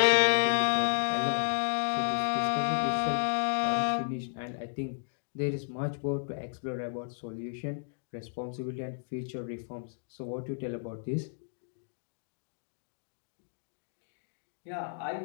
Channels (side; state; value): right; silent; digital silence